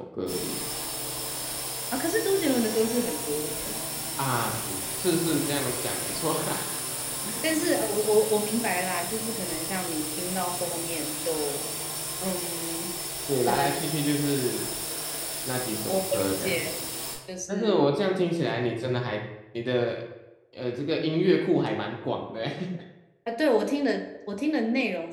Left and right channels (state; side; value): identical; both; correlation 1.00